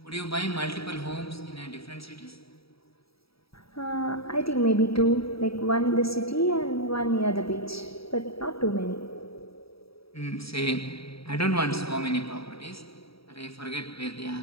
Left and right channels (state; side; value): late; right; 0.76 ms